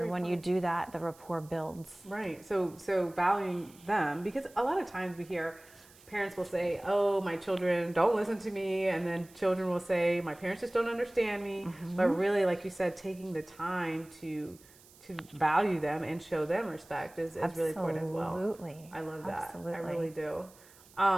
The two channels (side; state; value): right; noise; hiss, 25 dB below the sound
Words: when you do that, the rapport builds. Right. So valuing them, because a lot of times we hear parents will say, oh, my children don't listen to me, and then children will say, my parents just don't understand me. But really, like you said, taking the time to value them and show them respect is really important as well. Absolutely. I love that. Absolutely. I really do.